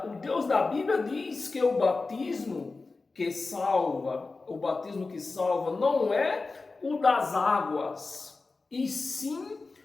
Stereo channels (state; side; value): quieter; right; 3.8 dB